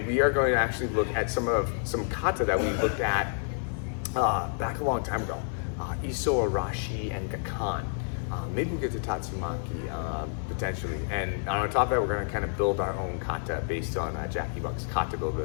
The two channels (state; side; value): silent; right; digital silence